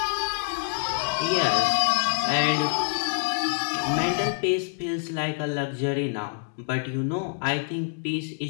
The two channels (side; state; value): right; silent; 61 dB below the other